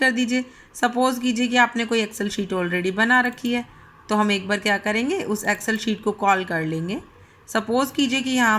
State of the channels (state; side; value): identical; both; correlation 1.00